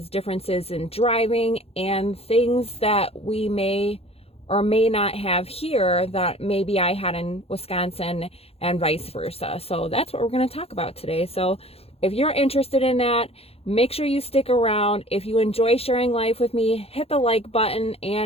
differences in driving and things that we may or may not have here that maybe I had in Wisconsin, and vice versa. So that's what we're going to talk about today. So if you're interested in that, make sure you stick around. If you enjoy sharing life with me, hit the like button.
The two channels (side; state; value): right; late; 0.29 ms